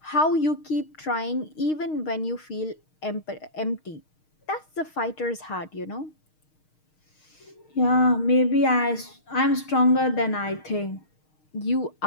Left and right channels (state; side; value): late; right; 6.5 ms